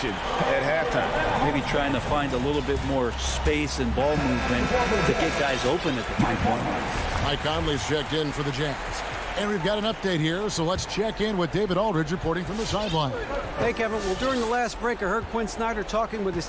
at halftime. Maybe trying to find a little bit more space and ball movement to get guys open at the 3-point line. Mike Conley's checked in for the Jazz. And we've got an update here, so let's check in with David Aldridge reporting from the sideline. Hey, Kevin. Well, during the last break, I heard Quinn Snyder talking with his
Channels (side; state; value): both; identical; correlation 1.00